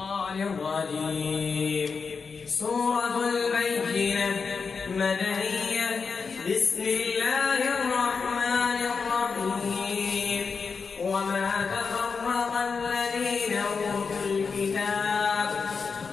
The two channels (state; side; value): quieter; right; 5.2 dB